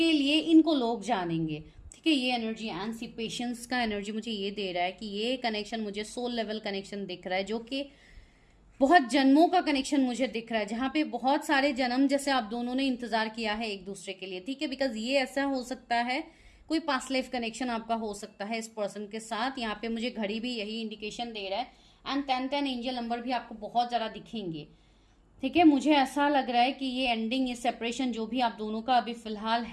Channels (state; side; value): identical; both; correlation 1.00